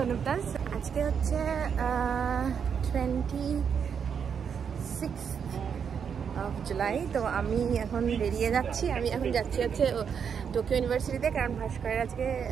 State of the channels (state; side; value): quieter; left; 7.1 dB